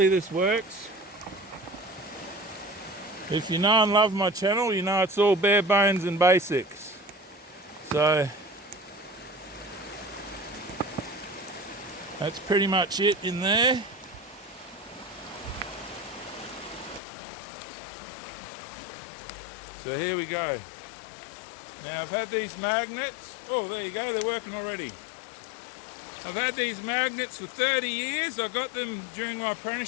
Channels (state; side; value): drops out; right; at 17.0 s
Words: this works. If you know and love my channel, you know it's all bare bones and basics. So that's pretty much it in there. So here we go. Now I've had these magnets. Oh, there you go, they're working already. I've had these magnets for 30 years. I got them during my